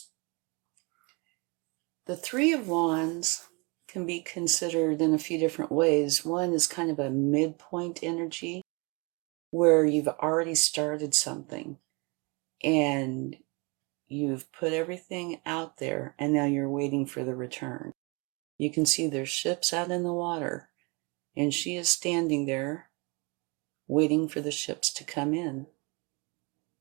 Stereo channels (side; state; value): left; quieter; 29.8 dB